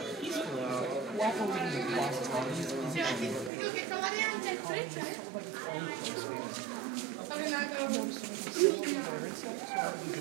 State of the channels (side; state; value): left; drops out; at 3.5 s